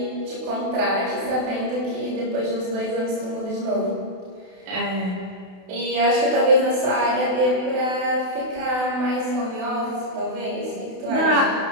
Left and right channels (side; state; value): left; late; 32 ms